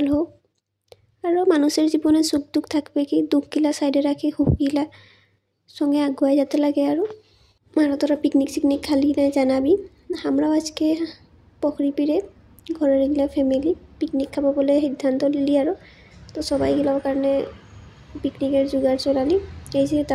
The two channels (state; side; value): identical; both; correlation 1.00